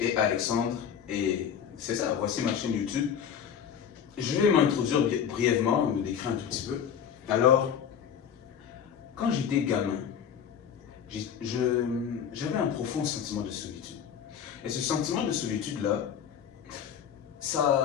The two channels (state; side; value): quieter; right; 8.2 dB